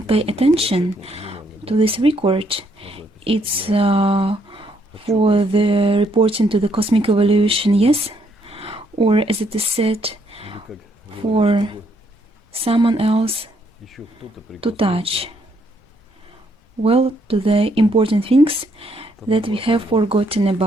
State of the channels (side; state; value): both; normal; correlation 0.72